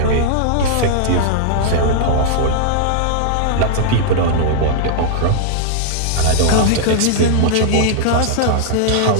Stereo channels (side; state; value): both; different; correlation -0.01